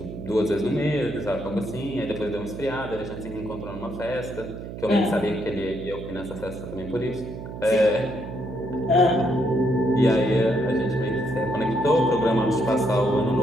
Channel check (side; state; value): right; noise; hum, 10 dB below the sound